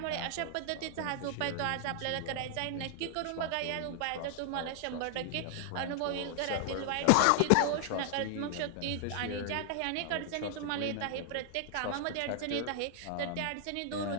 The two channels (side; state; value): both; different; correlation 0.00